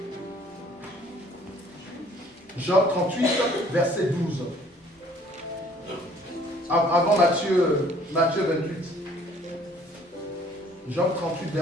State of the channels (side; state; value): both; normal; correlation 0.57